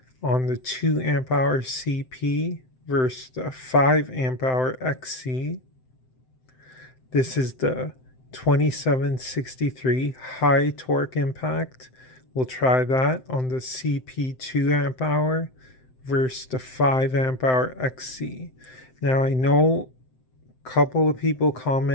on the 2 amp hour CP versus the 5 amp hour XC. This is the 2763 high torque impact. We'll try that on the CP 2 amp hour versus the 5 amp hour XC. Now I know a couple of people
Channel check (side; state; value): right; late; 7.8 ms